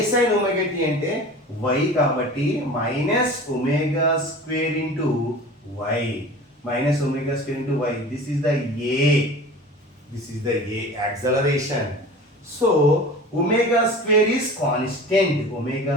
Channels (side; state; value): both; normal; correlation 0.38